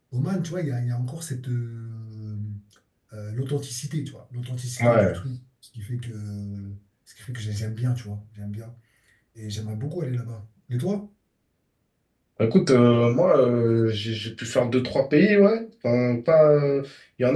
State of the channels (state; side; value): identical; both; correlation 1.00